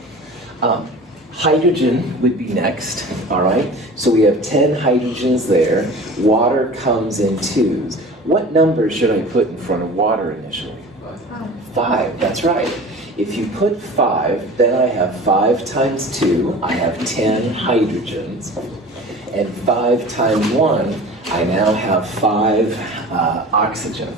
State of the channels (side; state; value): both; normal; correlation 0.39